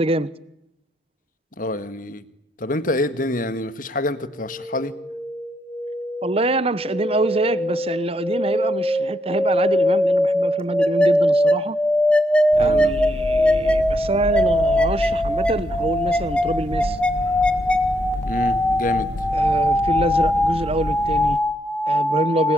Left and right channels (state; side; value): normal; both; correlation 0.77